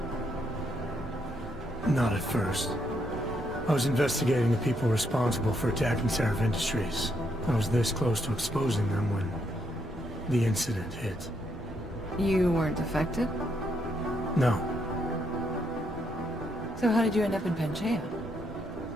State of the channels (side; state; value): both; normal; correlation 0.76